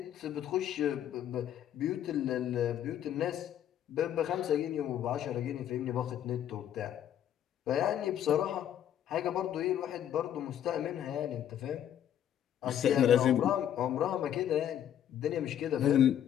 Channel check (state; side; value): quieter; right; 10.4 dB